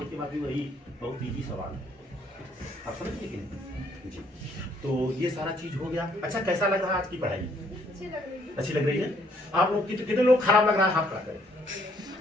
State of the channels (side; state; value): both; normal; correlation 0.67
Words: के बाकी वही बहुत इजी सवाल है। आप समझिए कि नहीं जी? तो ये सारा चीज हो गया। अच्छा, कैसा लग रहा है आज की पढ़ाई? अच्छी लग रही है। आप लोग कितने लोग खराब लग रहा है? हाथ खड़ा करें।